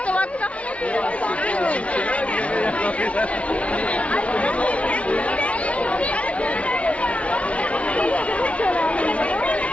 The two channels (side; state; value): right; late; 0.063 ms